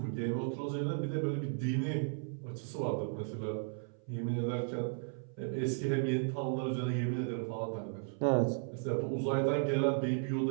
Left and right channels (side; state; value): left; silent; 54 dB below the other